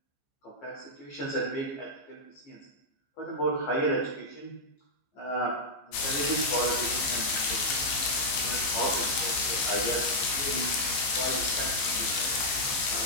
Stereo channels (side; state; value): right; late; 15 ms